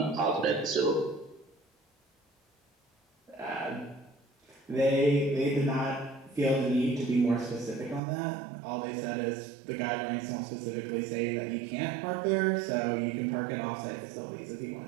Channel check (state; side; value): drops out; left; at 8.0 s